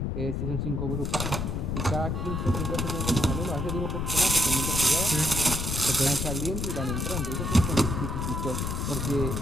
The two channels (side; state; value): left; noise; rumble, 1 dB below the sound